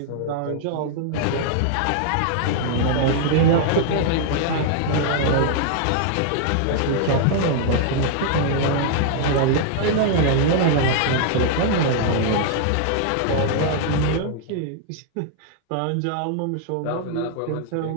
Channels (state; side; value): different; both; correlation -0.01